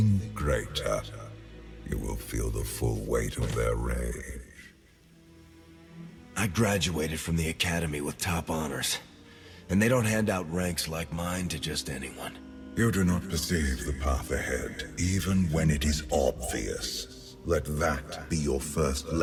greater, you will feel the full weight of their rage. I graduated from the academy with top honors, and they don't hand out ranks like mine to just anyone. You do not perceive the path ahead, even when it is obvious. Let that be your first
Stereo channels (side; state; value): both; identical; correlation 1.00